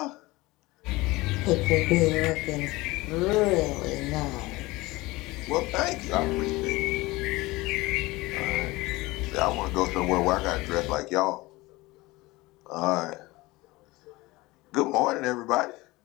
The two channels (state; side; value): quieter; right; 21.0 dB